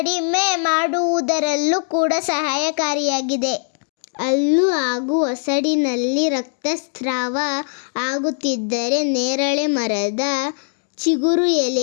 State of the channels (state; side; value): silent; right; digital silence